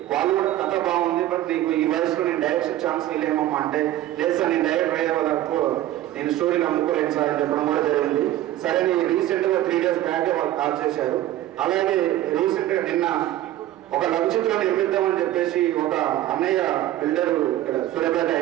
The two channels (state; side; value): quieter; left; 14.0 dB